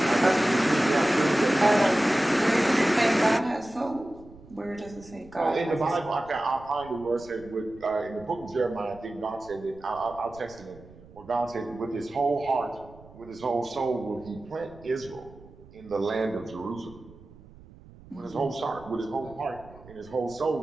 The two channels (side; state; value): right; noise; rumble, 21 dB below the sound